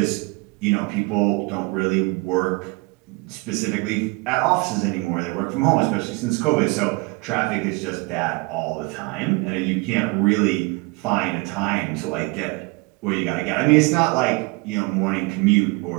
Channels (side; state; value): left; quieter; 26.8 dB